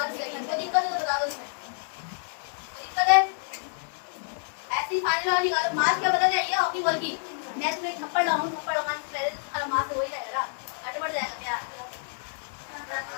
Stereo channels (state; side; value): silent; right; 59 dB below the other